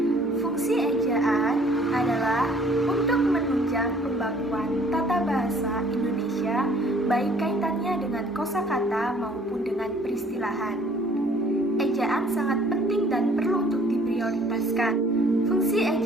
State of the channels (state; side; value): normal; both; correlation 0.57